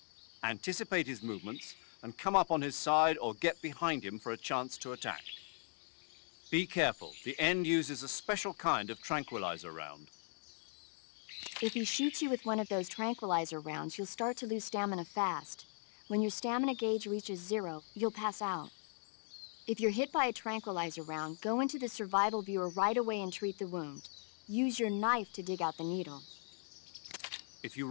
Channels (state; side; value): silent; right; 52 dB below the other